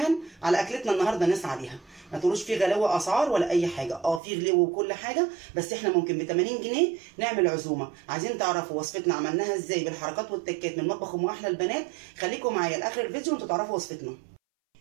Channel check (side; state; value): left; drops out; at 4.2 s